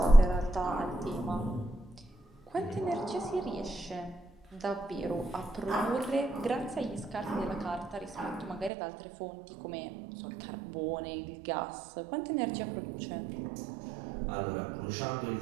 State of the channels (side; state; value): left; drops out; at 8.7 s